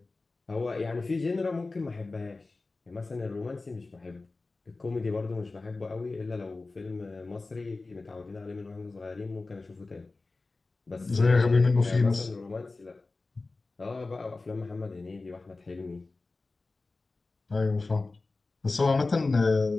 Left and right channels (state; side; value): quieter; right; 3.5 dB